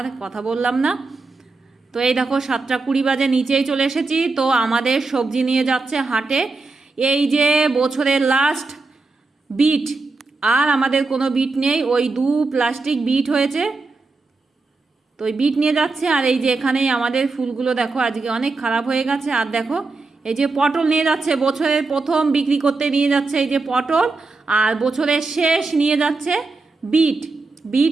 কথা বললাম না। তো এই দেখো 7:20 বাজে, নিচেই চলে এসেছি। তো আমাদের সবজি নিয়ে যাচ্ছে হাটে। এই যে বছরের লাস্ট বিট, আর আমাদের কোনো বিট নেই, ওই 2 প্লাস্টিক বিট হয়েছে, তো ওই বিট নিয়ে যাচ্ছে। আর এই যে এখানেই আমাদের ফুলগুলো দেখো আজকে অনেক খারাপ হয়ে গেছে। আর দেখো এই যে পটল নিয়ে যাচ্ছে, বছরের প্রথম বিক্রি করতে নিয়ে যাচ্ছে এই যে পটল, আর বছরের শেষ নিয়ে যাচ্ছে বিট।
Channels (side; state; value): left; quieter; 3.7 dB